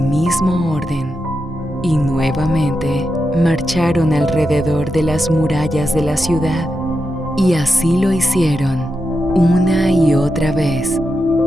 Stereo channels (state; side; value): normal; both; correlation 0.87